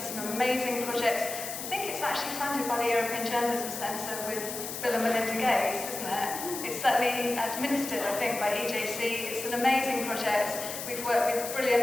is an amazing project. I think it's actually funded by the European Journalism Centre with Bill and Melinda Gates, isn't it? It's certainly administered, I think, by EJC. It's an amazing project. We've worked with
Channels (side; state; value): left; noise; hiss, 7 dB below the sound